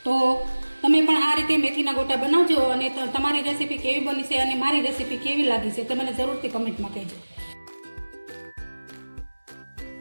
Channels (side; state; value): both; inverted; correlation -1.00